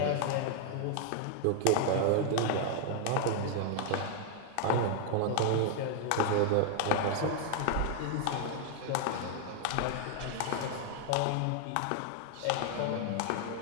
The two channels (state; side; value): different; both; correlation 0.00